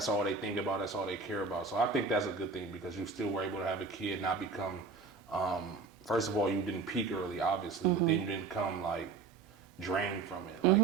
all they think about, that's all they care about. So I think that's a good thing, because you still were able to have a kid not become, first of all, you didn't peak early, obviously, but then you didn't come like drained from it. Like,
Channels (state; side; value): quieter; left; 4.5 dB